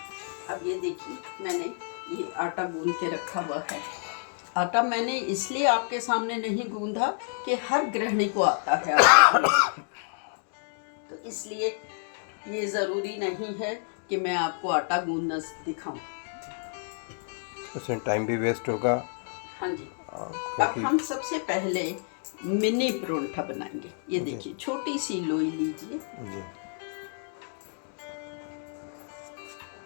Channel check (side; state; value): right; silent; 59 dB below the other